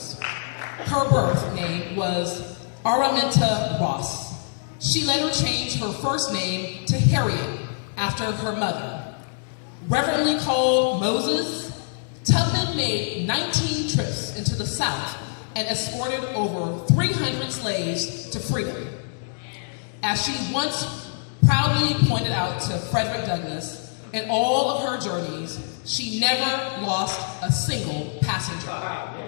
Her birth name was Araminta Ross. She later changed her first name to Harriet after her mother. Reverently called Moses, Tubman made 19 trips into the South and escorted over 300 slaves to freedom. As she once proudly pointed out to Frederick Douglass, in all of her journeys, she never lost a single passenger.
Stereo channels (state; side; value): silent; right; digital silence